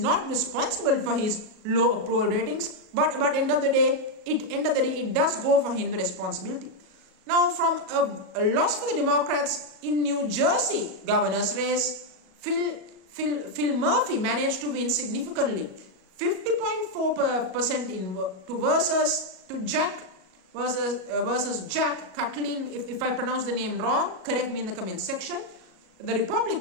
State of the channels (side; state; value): left; late; 37 ms